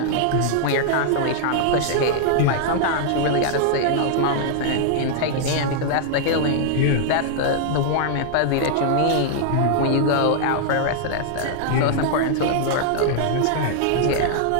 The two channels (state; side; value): different; both; correlation -0.01